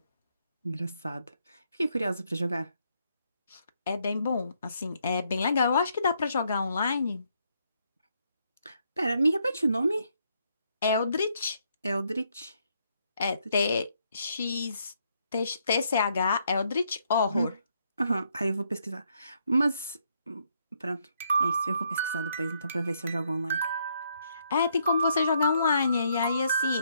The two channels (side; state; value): both; inverted; correlation -0.74